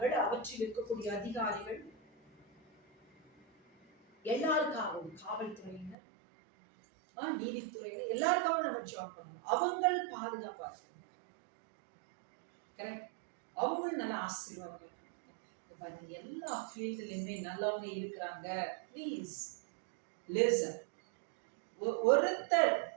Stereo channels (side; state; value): left; drops out; at 6.0 s